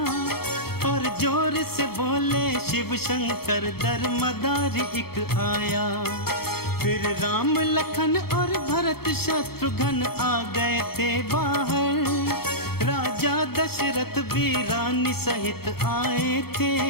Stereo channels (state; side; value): late; right; 0.95 ms